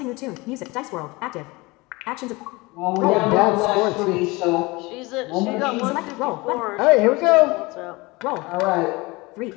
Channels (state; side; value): quieter; right; 23.6 dB